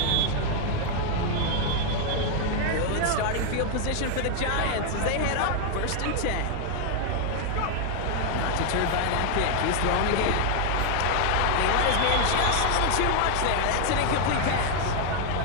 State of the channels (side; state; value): both; different; correlation 0.00